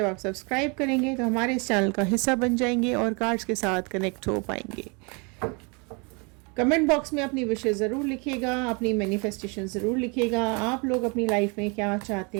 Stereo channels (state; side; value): quieter; left; 31.8 dB